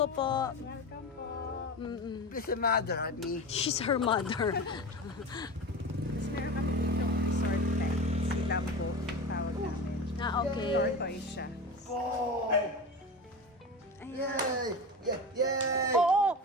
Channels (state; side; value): normal; both; correlation 0.27